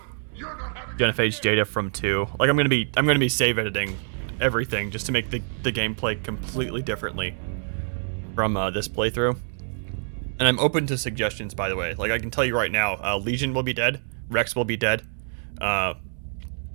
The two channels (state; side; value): silent; left; digital silence